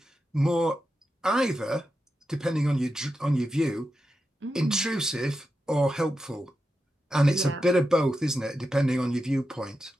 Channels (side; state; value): both; normal; correlation 0.89